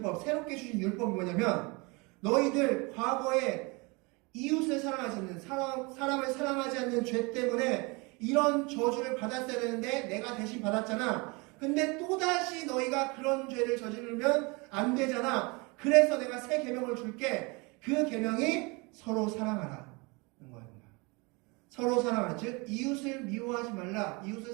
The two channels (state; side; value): quieter; left; 27.8 dB